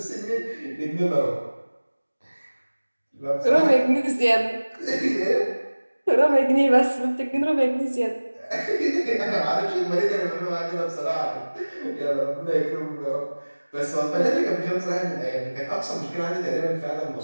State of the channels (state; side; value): inverted; both; correlation -1.00